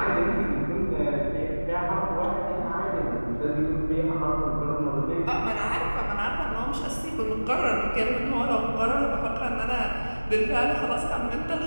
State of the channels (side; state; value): both; inverted; correlation -1.00